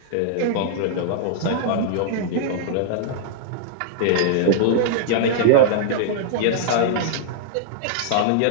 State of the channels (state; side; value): different; both; correlation -0.01